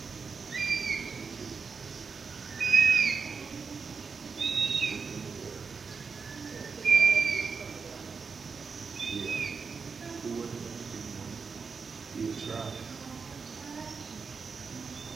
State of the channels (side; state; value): left; quieter; 5.2 dB